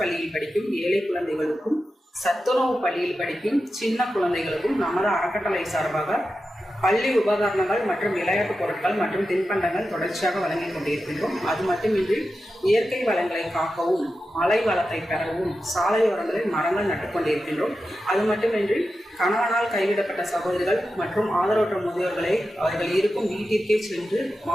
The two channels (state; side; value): normal; both; correlation 0.91